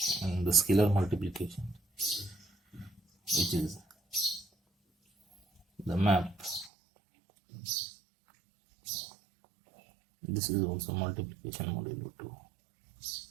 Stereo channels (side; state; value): left; drops out; at 6.7 s